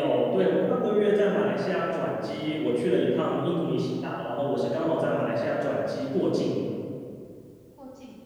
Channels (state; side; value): identical; both; correlation 1.00